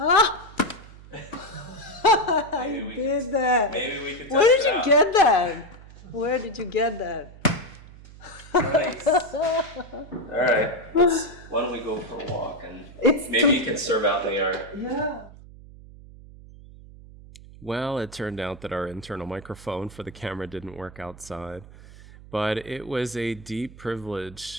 I did that. Maybe we could test Where did it you out. get that? Where did you get that? Nice. All right. Why don't we go for a walk, and maybe you can serve out in the yard. Yeah. Well, it turned out that our internal microphone for the camera didn't work outside, but it was a deep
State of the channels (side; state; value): right; noise; hum, 19 dB below the sound